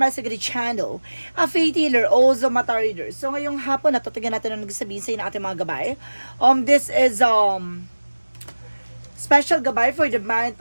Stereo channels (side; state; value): both; inverted; correlation -1.00